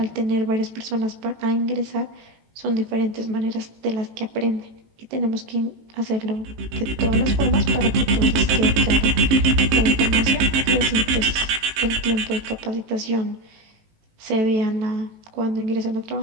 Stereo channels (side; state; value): left; late; 18 ms